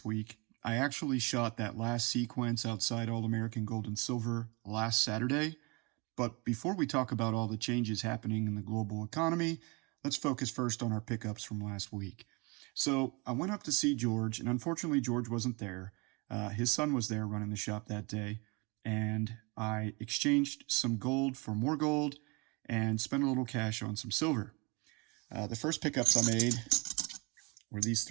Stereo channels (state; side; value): quieter; left; 28.8 dB